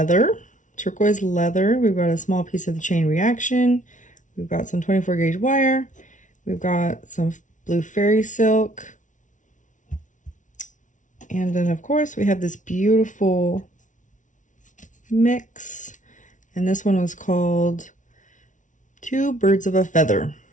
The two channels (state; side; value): late; right; 0.37 ms